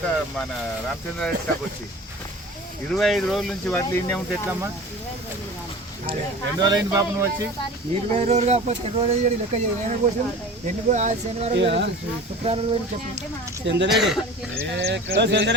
మన రామచంద్రారెడ్డి స్టాప్ వచ్చి. 25 రోజుల నుంచి వాటిలో ఇన్నే ఉంటే ఎట్లమ్మా? ఎన్ని రోజులు అయింది పాప నువ్వు వచ్చి? 20 రోజులు కాకపోతే 2 రోజులు లెక్క చేయడం కోసం శనివారం శుక్రవారం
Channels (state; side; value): normal; both; correlation 0.39